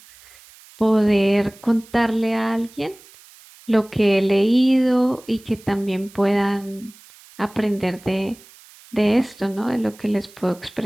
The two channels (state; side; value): noise; right; hiss, 24 dB below the sound